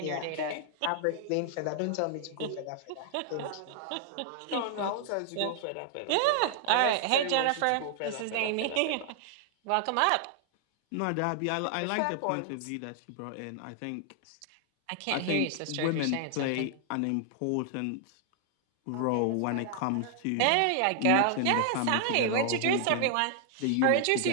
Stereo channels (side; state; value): both; different; correlation 0.00